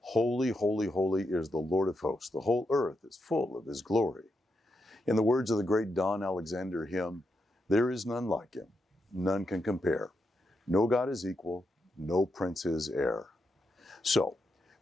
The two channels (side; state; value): both; normal; correlation 0.83